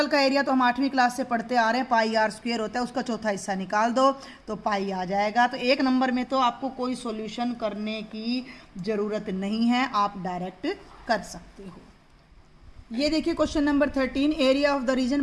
का एरिया तो हम 8वीं क्लास से पढ़ते आ रहे हैं, पाई आर स्क्वेयर होता है, उसका चौथा हिस्सा निकाल दो तो पाई आ जाएगा। तो 1 नंबर में तो आपको कोई सोल्यूशन करने की ज़रूरत नहीं है, आप डायरेक्ट कर सकते हो। ये देखिए question number 13, area of the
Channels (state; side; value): identical; both; correlation 1.00